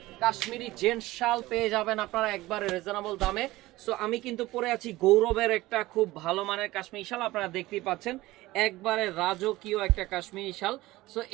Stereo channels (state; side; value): quieter; left; 18.4 dB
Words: কাশ্মীরি জেন্টস শাল পেয়ে যাবেন আপনারা একবারে রিজনেবল দামে। সো আমি কিন্তু পরে আছি গৌরবের একটা খুব ভালো মানের কাশ্মীরি শাল, আপনারা দেখতেই পাচ্ছেন একবারে রাজকীয় একটা কাশ্মীরি শাল। সো